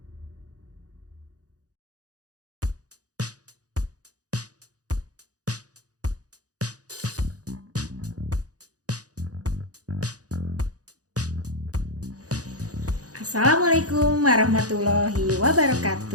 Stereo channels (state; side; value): late; left; 0.67 ms